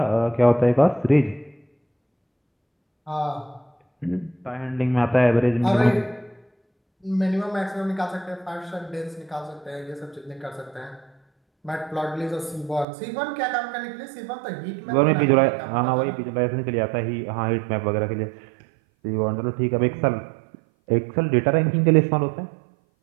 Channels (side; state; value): left; drops out; at 12.9 s